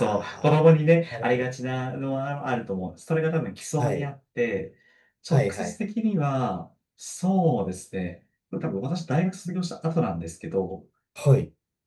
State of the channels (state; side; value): identical; both; correlation 1.00